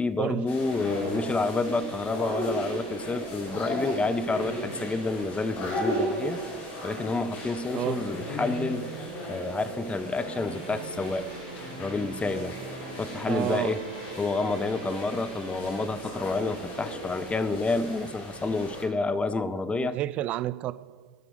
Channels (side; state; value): both; normal; correlation 0.66